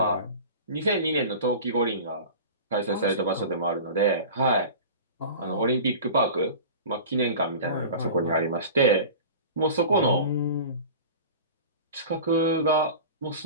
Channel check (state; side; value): inverted; both; correlation -0.36